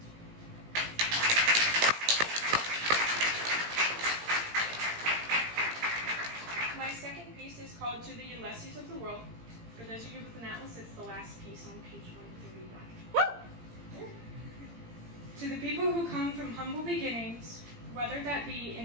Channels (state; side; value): late; left; 17 ms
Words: My second piece is called To the Ulysses of the World. For those of you with an atlas, it's the last piece on page 131. To the people who come from humble beginnings, whether that be